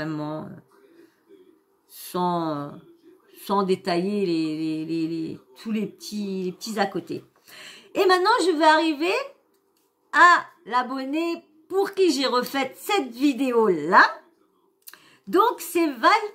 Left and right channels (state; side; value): identical; both; correlation 1.00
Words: sans détailler tous les petits à côté. Et maintenant je vais arriver à l'abonné pour qui j'ai refait cette vidéo là. Donc c'est Val